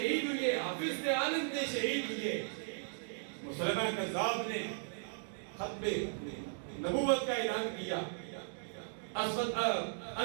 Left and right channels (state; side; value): silent; left; digital silence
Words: ہوئے، حافظ عالم نے شہید ہوئے، مسلمہ کذاب نے ختم نبوت کا اعلان کیا، اسود